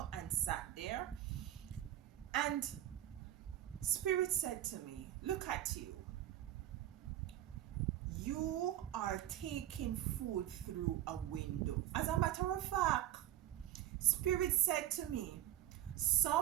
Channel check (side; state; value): left; quieter; 12.5 dB